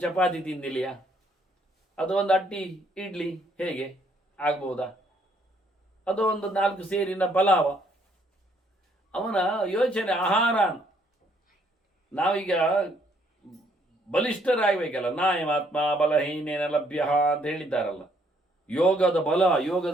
ಚಪಾತಿ ತಿಂದಿಲಿಯಾ? ಅದು ಒಂದು ಅಟ್ಟಿ ಇಡ್ಲಿ ಹೇಗೆ ಆಗ್ಬೋದಾ? ಅದು ಒಂದು 4 ಸೇರಿನ ಪಲಾವ. ಅವನ ಯೋಚನೆ ಆಹಾರ. ನಾವೀಗ ಬಲಿಷ್ಠರಾಗಬೇಕಲ್ಲ, ನಾಯಮಾತ್ಮ ಬಲಹೀನೇನ ಲಭ್ಯ ಅಂತ ಹೇಳಿದ್ದಾರಲ್ಲ. ಯೋಗದ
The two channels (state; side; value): normal; both; correlation 0.67